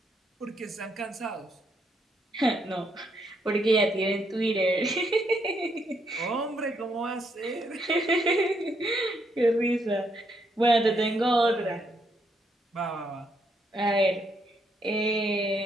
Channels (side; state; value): both; normal; correlation 0.76